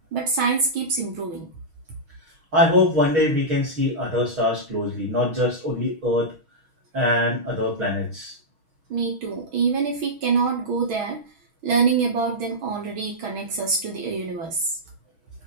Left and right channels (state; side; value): late; left; 6.2 ms